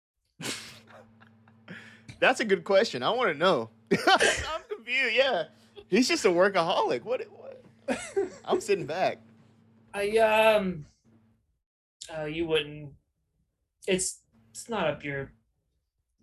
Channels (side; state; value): both; identical; correlation 1.00